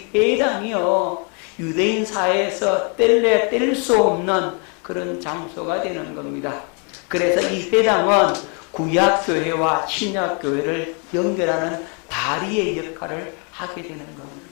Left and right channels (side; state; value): right; quieter; 37.5 dB